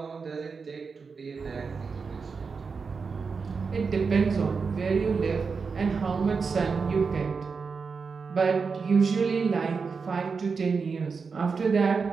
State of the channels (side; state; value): left; quieter; 5.1 dB